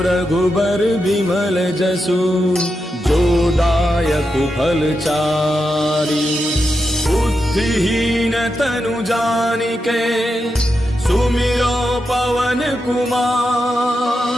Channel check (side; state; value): both; normal; correlation 0.87